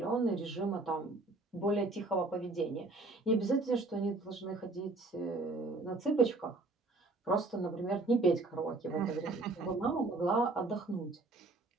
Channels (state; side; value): quieter; left; 3.2 dB